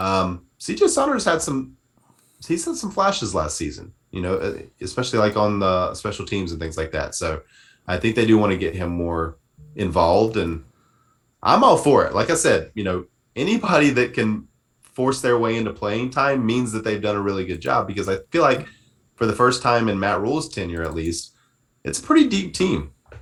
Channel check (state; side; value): identical; both; correlation 1.00